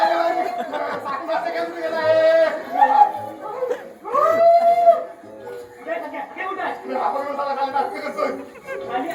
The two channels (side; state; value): both; identical; correlation 1.00